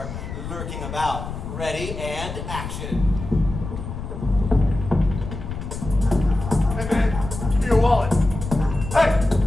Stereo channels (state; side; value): noise; left; rumble, 8 dB below the sound